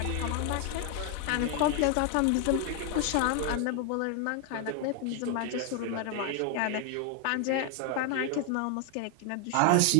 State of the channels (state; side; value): different; both; correlation 0.01